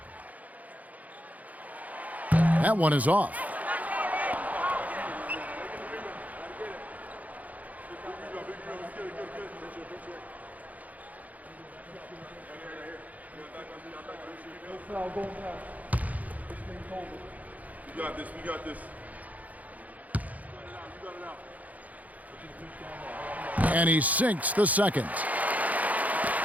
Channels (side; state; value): left; late; 0.075 ms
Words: That one is off. We got this. We got this. And he sinks the second.